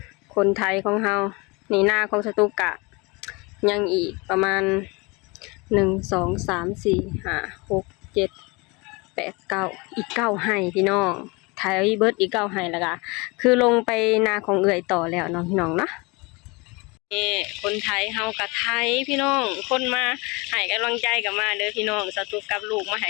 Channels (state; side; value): quieter; right; 26.8 dB